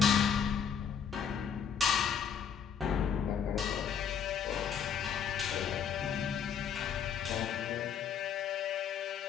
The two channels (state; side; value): quieter; right; 7.6 dB